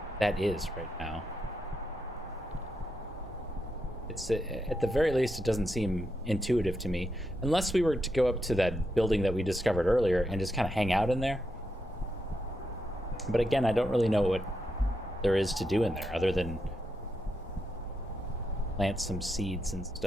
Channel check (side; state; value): both; normal; correlation 0.84